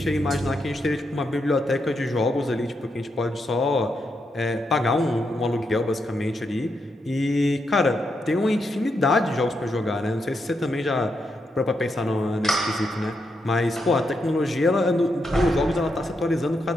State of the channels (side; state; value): both; normal; correlation 0.82